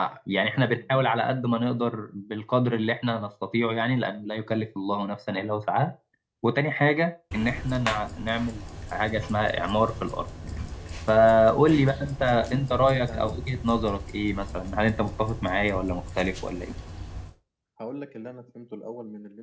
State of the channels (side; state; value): both; identical; correlation 1.00